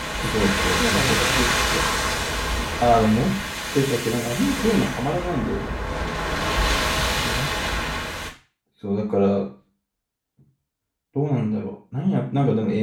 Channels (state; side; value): identical; both; correlation 1.00